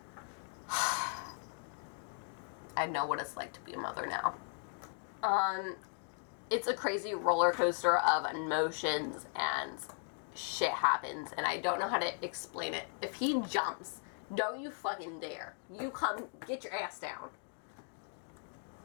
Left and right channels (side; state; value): right; silent; 53 dB below the other